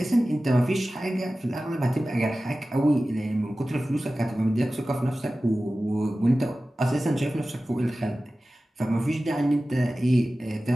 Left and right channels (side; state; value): both; normal; correlation 0.96